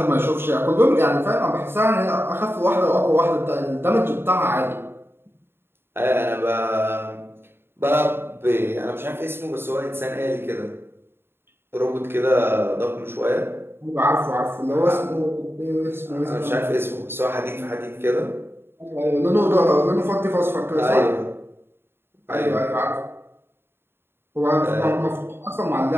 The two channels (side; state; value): left; late; 0.11 ms